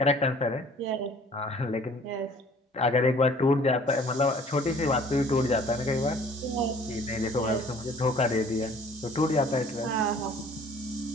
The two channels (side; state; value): both; normal; correlation 0.53